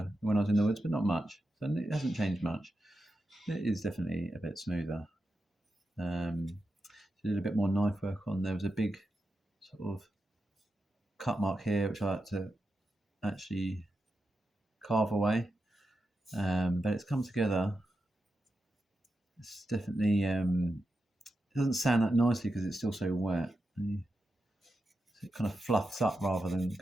when I was in the woods, but not much. So it hasn't changed much. It is definitely a bit smoother. Did a bit more knife work on. There was a big sort of cut mark here, which I had to actually carve away. But it's come together. It's definitely it doesn't sand that nicely because it's still so wet. So it kind of fluffs up rather than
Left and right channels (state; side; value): normal; both; correlation 0.88